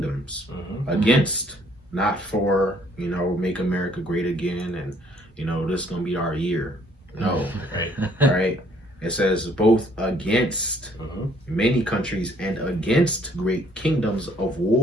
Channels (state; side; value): normal; both; correlation 0.63